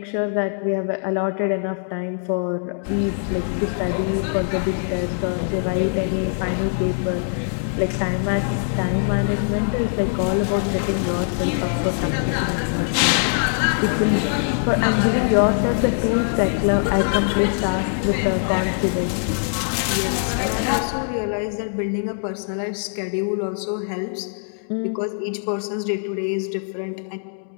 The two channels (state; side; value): silent; right; digital silence